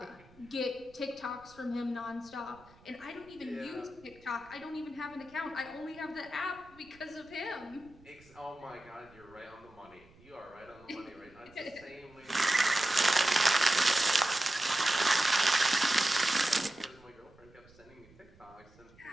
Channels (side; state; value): right; noise; rumble, 26 dB below the sound